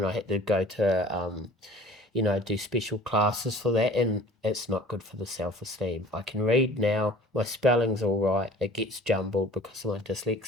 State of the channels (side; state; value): both; normal; correlation 0.46